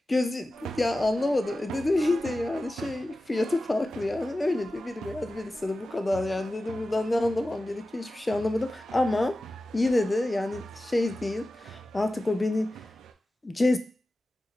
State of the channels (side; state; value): both; normal; correlation 0.94